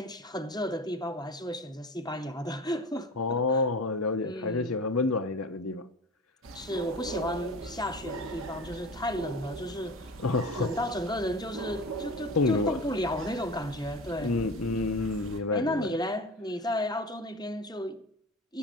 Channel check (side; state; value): both; normal; correlation 0.33